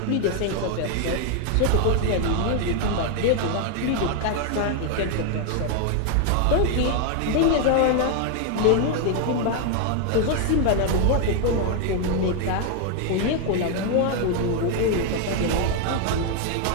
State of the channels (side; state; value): both; different; correlation 0.01